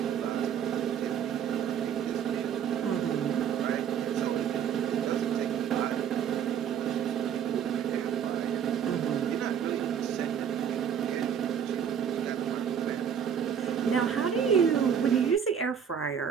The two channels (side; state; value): left; quieter; 8.2 dB